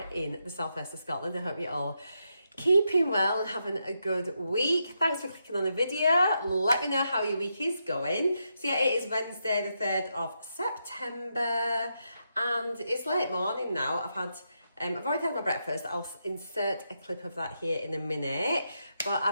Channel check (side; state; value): both; inverted; correlation -0.83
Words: in the southwest of Scotland. I hope you're all keeping well and having a good week. Thanks for clicking on the video. Let me know how your week is going. So yeah, it is Wednesday the 3rd of September and it's late morning now. I've already had my breakfast. I'll insert a clip of that here in a minute. But